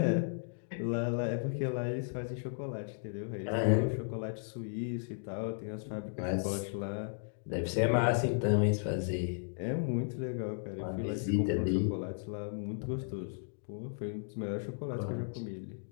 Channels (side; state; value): right; silent; digital silence